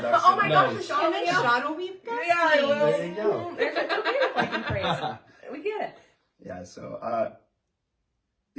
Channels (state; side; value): identical; both; correlation 1.00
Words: Oh my gosh, Nice. Sean, And then Sean will be besties. Yeah, I will. There you go. There's a computer fucking praise. We get it. Yeah. So